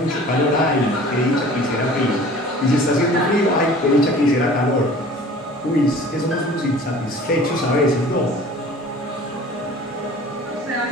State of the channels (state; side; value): normal; both; correlation 0.45